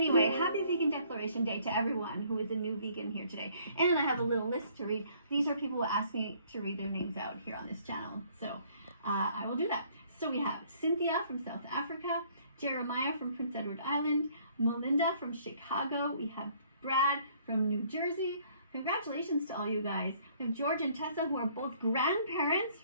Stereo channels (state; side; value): inverted; both; correlation -0.61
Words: happy Vegan Declaration Day to everyone who is a new vegan here today. And I have a little list to read. These are people who asked me to read their names out here on this channel, so I will do that. So we have Cynthia from South Africa, Jeremiah from Prince Edward Island, Melinda from Chicago, we have Brad from New Jersey. Congratulations to all you guys. We have George and Tessa, who are both grandparents